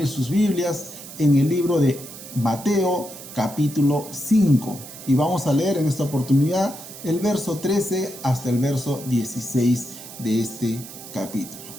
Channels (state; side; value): noise; right; hiss, 14 dB below the sound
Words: sus Biblias en el libro de Mateo capítulo 5 y vamos a leer en esta oportunidad el verso 13 hasta el verso 16 de este capítulo.